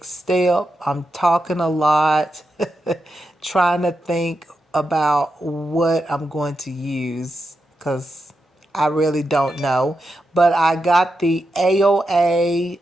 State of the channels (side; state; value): both; normal; correlation 0.87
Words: step. I'm talking a lot, trying to think about what I'm going to use because I really don't know. But I got the AOA